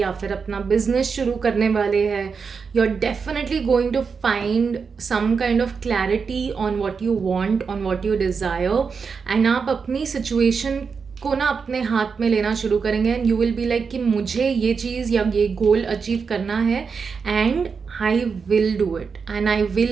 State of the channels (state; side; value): quieter; left; 5.5 dB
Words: फिर अपना बिजनेस शुरू करने वाले हैं. You are definitely going to find some kind of clarity on what you want, on what you desire. And आप अपनी सिचुएशन को ना अपने हाथ में लेना शुरू करेंगे and you will be like कि मुझे ये चीज़ या ये गोल अचीव करना है and I will do it and I